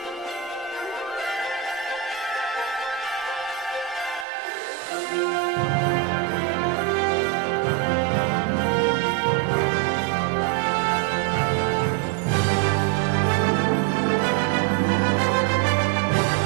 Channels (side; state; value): left; drops out; at 4.2 s